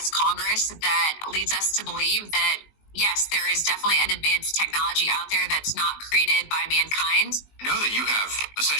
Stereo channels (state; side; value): late; right; 19 ms